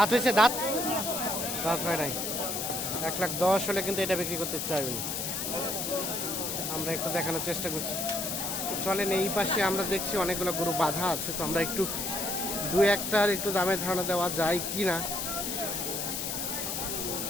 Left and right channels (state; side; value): noise; left; hiss, 2 dB below the sound